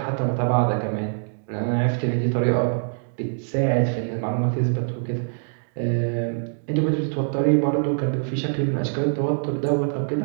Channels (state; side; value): silent; left; digital silence